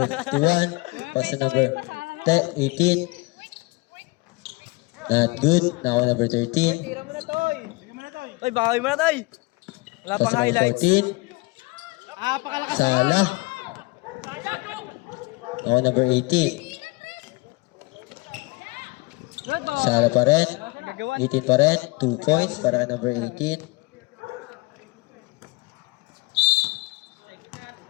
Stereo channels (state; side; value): quieter; right; 24.8 dB